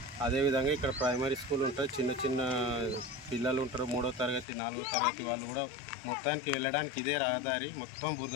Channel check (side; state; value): right; drops out; at 4.5 s